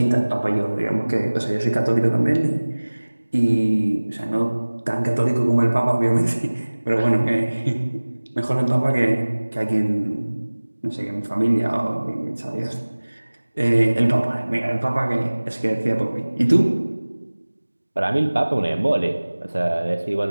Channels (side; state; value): both; inverted; correlation -1.00